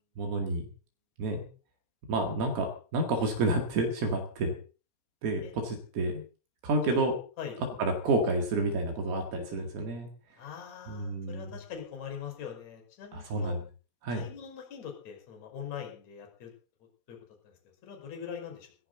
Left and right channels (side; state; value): left; late; 4.2 ms